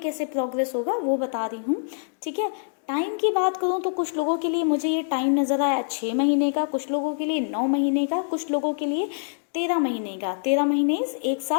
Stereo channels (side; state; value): right; silent; digital silence